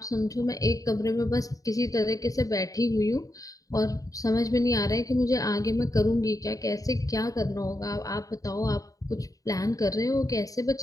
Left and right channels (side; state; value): right; late; 0.17 ms